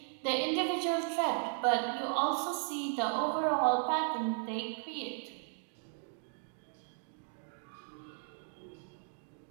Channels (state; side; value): silent; left; 54 dB below the other